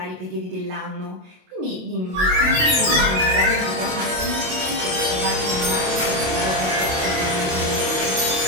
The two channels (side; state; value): left; late; 27 ms